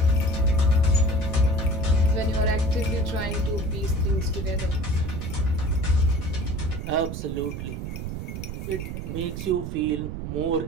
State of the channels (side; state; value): right; noise; rumble, 6 dB below the sound